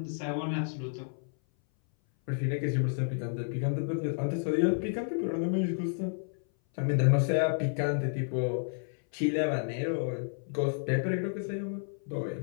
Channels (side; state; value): right; silent; 57 dB below the other